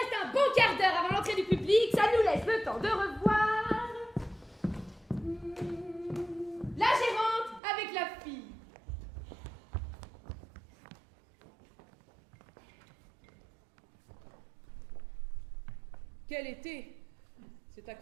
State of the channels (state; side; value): drops out; left; at 7.6 s